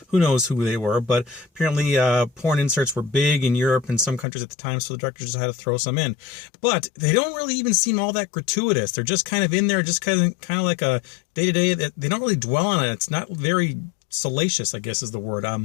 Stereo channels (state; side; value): drops out; right; at 4.2 s